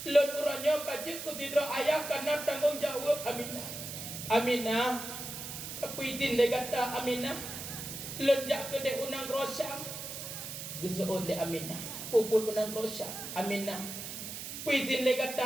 Lun uranya kajib kesidra ayah karena tanggung jawab Aminah tapi izin le kata Aminah lun jak kedeh unang Rosyam gezoon le Aminah puput unang Rosyam Aminah izin le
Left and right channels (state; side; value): noise; right; hiss, 8 dB below the sound